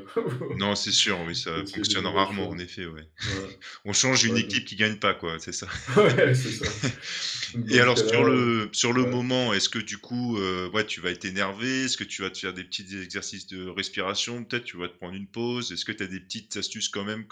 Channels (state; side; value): identical; both; correlation 1.00